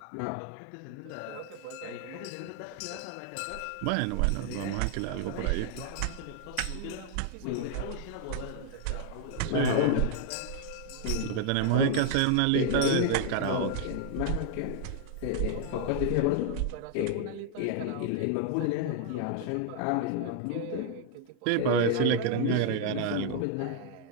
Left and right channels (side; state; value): both; different; correlation 0.00